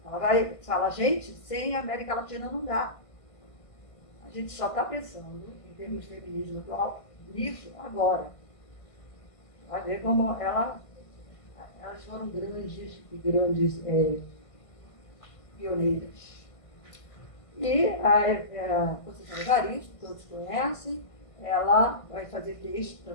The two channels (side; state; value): right; late; 1.5 ms